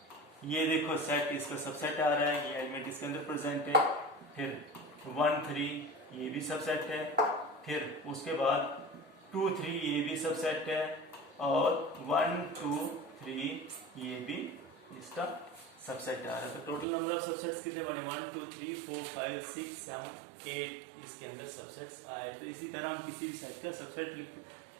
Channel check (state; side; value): drops out; left; at 16.9 s